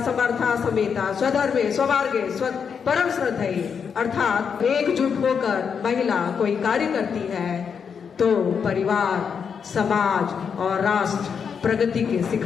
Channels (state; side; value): quieter; right; 6.6 dB